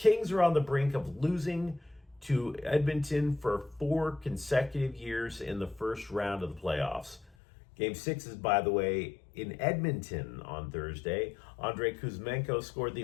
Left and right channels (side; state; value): right; drops out; at 7.3 s